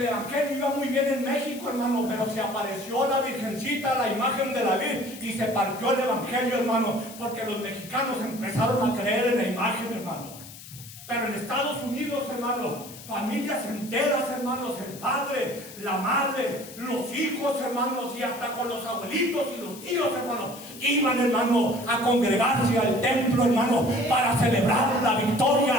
evangelio iba muy bien en México, hermano, pero se apareció la Virgencita, la imagen de la Virgen, y se partió el evangelio, hermano, porque los mexicanos empezaron a creer en la imagen, hermano. Pero en Estados Unidos, hermano, familias enteras, hermanos, el padre, la madre, los hijos, hermanos, y hasta con los abuelitos y los tíos, hermanos, iban, hermano, a congregarse al templo, hermano, para celebrar la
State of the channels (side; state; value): left; noise; hiss, 16 dB below the sound